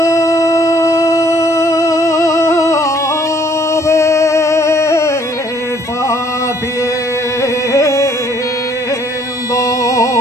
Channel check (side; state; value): both; normal; correlation 0.62